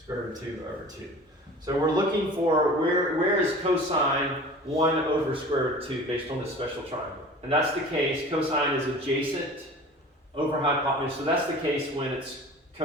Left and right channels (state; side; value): normal; both; correlation 0.41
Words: root of 2 over 2. So we're looking for where is cosine 1 over square root of 2 based on this special triangle. And that's the case, cosine is adjacent over hypotenuse. So that's the case when it's